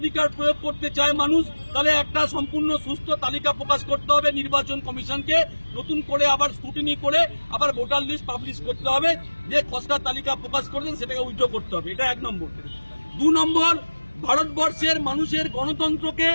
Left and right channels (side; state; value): both; inverted; correlation -1.00